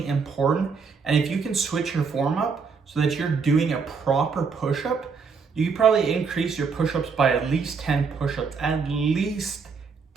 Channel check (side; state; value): left; quieter; 5.3 dB